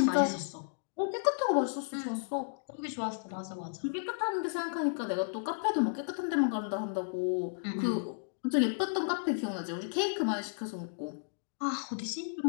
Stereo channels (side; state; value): right; silent; digital silence